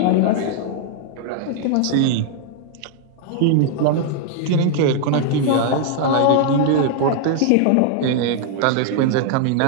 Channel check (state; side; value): different; both; correlation 0.00